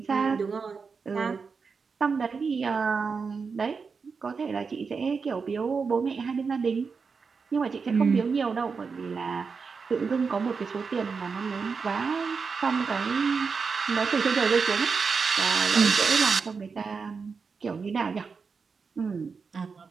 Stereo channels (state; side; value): quieter; left; 5.2 dB